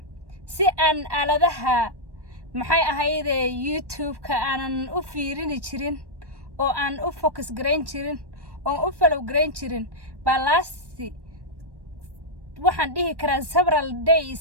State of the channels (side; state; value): left; late; 1.1 ms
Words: si aan aaladaha maxay ahayde YouTube-ka aanan u fiirin jirin oo aan u focus gareyn jirin oo u follow gareyn jirin balasi waxaan dhihi karaa several